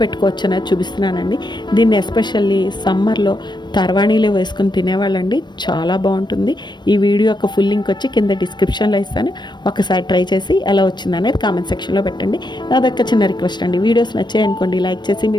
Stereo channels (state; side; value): late; right; 0.22 ms